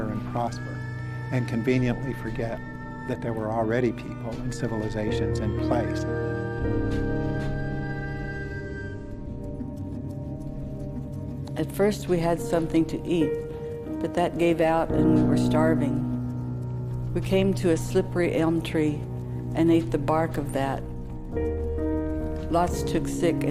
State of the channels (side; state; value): both; identical; correlation 1.00